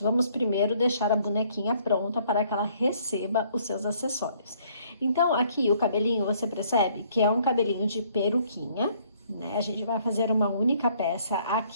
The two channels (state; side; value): inverted; both; correlation -0.63